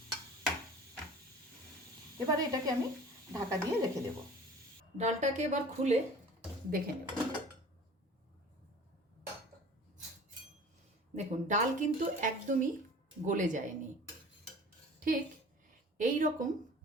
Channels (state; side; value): normal; both; correlation 0.44